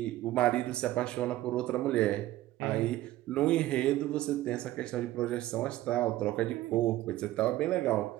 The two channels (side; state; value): left; quieter; 15.4 dB